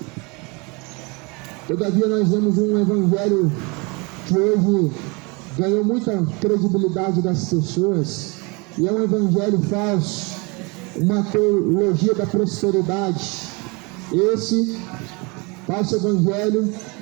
Todavia nós vemos um evangelho que hoje ganhou muita credibilidade das pessoas, e é um evangelho falso, uma teologia da prosperidade. Esse falso evangelho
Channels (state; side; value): quieter; left; 28.7 dB